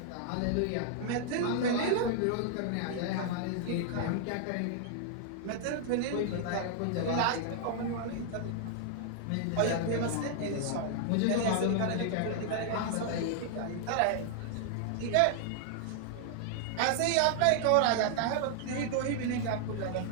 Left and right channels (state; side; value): different; both; correlation 0.00